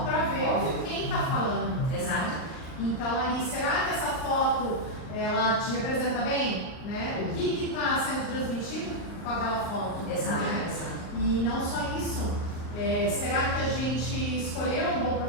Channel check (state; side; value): late; right; 40 ms